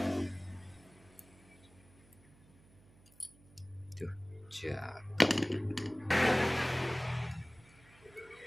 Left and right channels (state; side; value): noise; right; hum, 26 dB below the sound